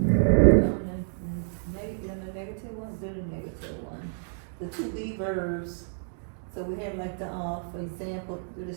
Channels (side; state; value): left; silent; digital silence